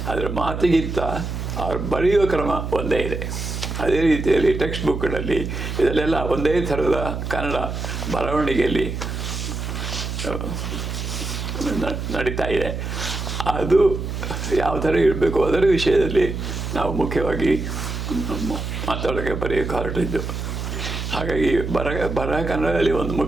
ಆದರೆ ಮಾತಿಗಿಂತ ಅವ್ರು ಬರೆಯುವ ಕ್ರಮ ಒಂದೇ ಇದೆ. ಅದೇ ರೀತಿಯಲ್ಲಿ ಟೆಕ್ಸ್ಟ್ ಬುಕ್ಗಳಲ್ಲಿ ಇದರಲ್ಲೆಲ್ಲ ಒಂದೇ ಥರದ ಕನ್ನಡ ಬರವಣಿಗೆಯಲ್ಲಿ ನಡೀತಾ ಇದೆ. ಅದು ಯಾವ ಥರ ಇರಬೇಕು ಅದರ ವಿಷಯದಲ್ಲಿ ನಾವು ಮುಖ್ಯವಾಗಿ ಮಾತಾಡೋಕ್ಕೆ ಬರೆಯೋಕ್ಕೆ ಹೊರಟಿದ್ದು. ಹಾಗಾಗಿ ಬರಹ ಕನ್ನಡದಲ್ಲಿ ಒಂದು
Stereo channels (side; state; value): right; noise; hum, 5 dB below the sound